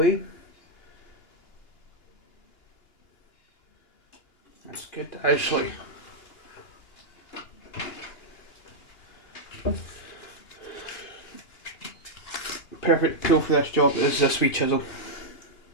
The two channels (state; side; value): late; right; 2.9 ms